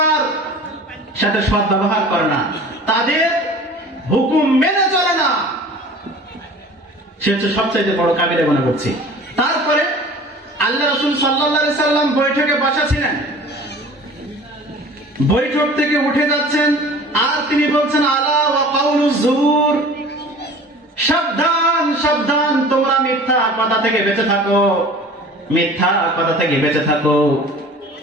সাথে সৎ ব্যবহার করে না, তাদের হুকুম মেনে চলে না, সে হচ্ছে সবচাইতে বড় কাবিরা গুনাহ করছে। তারপরে আল্লাহ রাসূল সাল্লাল্লাহু আলাইহি সাল্লাম বৈঠকে বসা ছিলেন, বৈঠক থেকে উঠে যাচ্ছেন আর তিনি বলছেন আলা ওয়া কাউলুজ জুর, সাবধান সাবধান, তোমরা মিথ্যা কথা থেকে বেঁচে থাকো, মিথ্যা কথা থেকে বেঁচে থাকো।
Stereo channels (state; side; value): normal; both; correlation 0.43